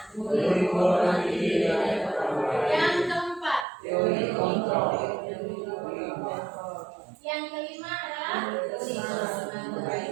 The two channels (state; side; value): drops out; left; at 3.7 s